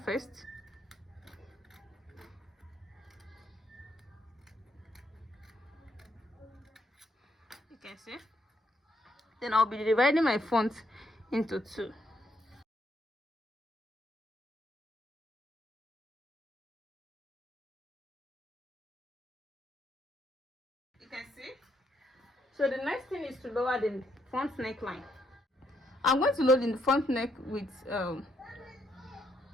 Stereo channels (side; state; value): both; normal; correlation 0.74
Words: first. You can see. Then I'll be dividing my front into two. You can see. So the next thing is to lower the front neckline. I'm going to load in the front neck with